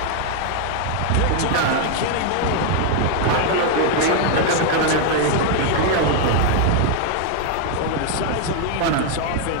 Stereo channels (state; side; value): different; both; correlation 0.00